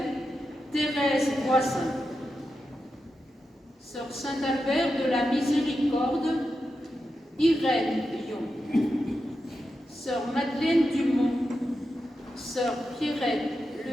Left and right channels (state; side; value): normal; both; correlation 0.89